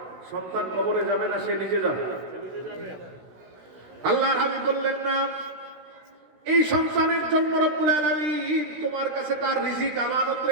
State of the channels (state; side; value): late; left; 16 ms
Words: সন্তান কবরে যাবে না, সে নিজে যাবে। আল্লাহর হাবিব বললেন, না, এই সন্তানের জন্য রব্বুল আলামিন তোমার কাছে তার রিজিক আমানত